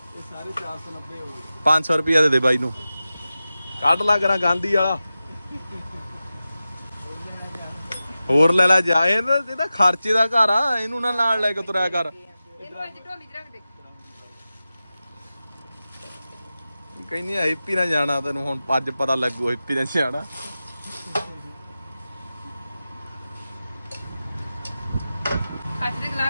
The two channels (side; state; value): both; inverted; correlation -0.94